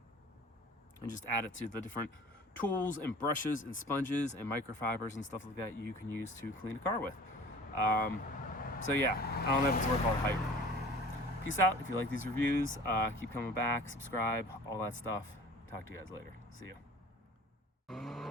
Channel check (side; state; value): both; normal; correlation 0.44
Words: just add it to the different tools and brushes and sponges and microfibers and stuff like that you can use to clean a car with. So yeah, I don't know if it's worth all the hype. Peace out. If you like these reviews, keep coming back, subscribe, all that stuff. Talk to you guys later. See ya.